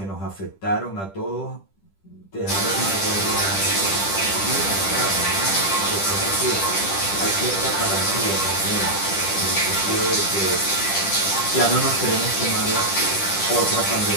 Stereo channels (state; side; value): late; right; 10 ms